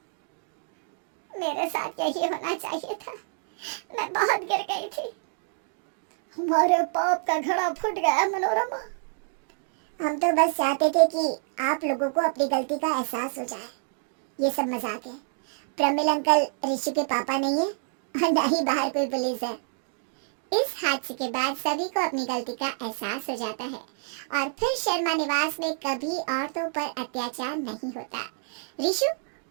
मेरे साथ यही होना चाहिए था, मैं बहुत गिर गई थी। हमारे पाप का घड़ा फूट गया मनोरमा। हम तो बस चाहते थे कि आप लोगों को अपनी गलती का एहसास हो जाए। ये सब मजाक है। प्रमिल अंकल ऋषि के पापा नहीं है और ना ही बाहर कोई पुलिस है। इस हादसे के बाद सभी को अपनी गलती का एहसास हो जाता है और फिर शर्मा निवास में कभी औरतों पर अत्याचार नहीं होता। ऋषु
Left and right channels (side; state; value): left; silent; digital silence